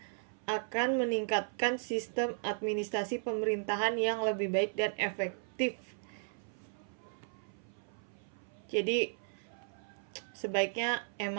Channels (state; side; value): silent; left; 54 dB below the other